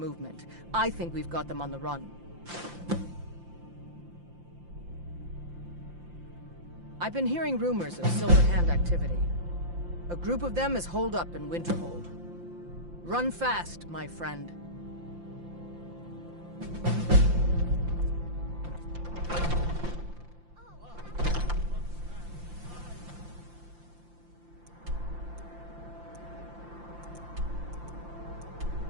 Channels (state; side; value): late; left; 5.8 ms